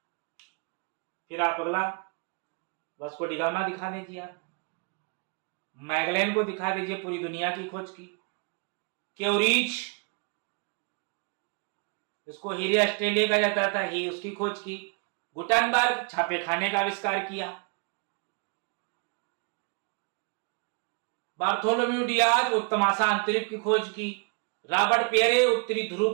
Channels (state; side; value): quieter; left; 34.3 dB